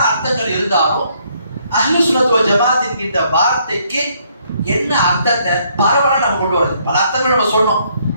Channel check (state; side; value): inverted; both; correlation -0.69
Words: அர்த்தங்கள் இருந்தாலும் அஹ்லு சுன்னத் வல் ஜமாத் என்கின்ற வார்த்தைக்கு என்ன அர்த்தத்தை பரவலாக நம்ம கொண்டு வருது. பல அர்த்தங்கள் நம்ம சொன்னோம்.